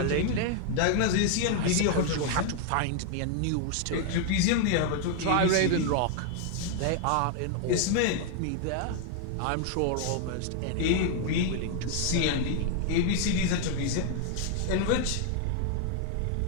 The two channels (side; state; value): both; different; correlation 0.00